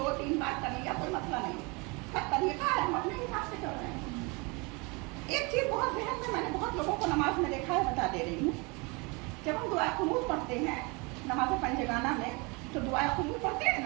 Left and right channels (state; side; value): quieter; left; 28.6 dB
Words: बार कर लिया, कोई मसला नहीं है, सब तरीका है, हम अपने हिसाब से कर रहे हैं। एक चीज बहुत जहन में, मैंने बहुत लोगों को नमाज में देखा है, बता दे रही हूँ। जब हम दुआ कुनूत पढ़ते हैं नमाज पंजगाना में, तो दुआ कुनूत पढ़ते हैं